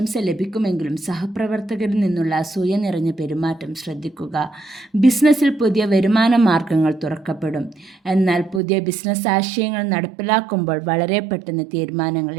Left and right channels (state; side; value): drops out; left; at 8.6 s